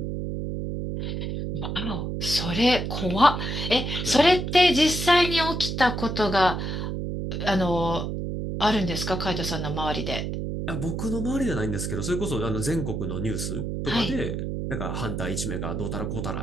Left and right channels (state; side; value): noise; right; hum, 3 dB below the sound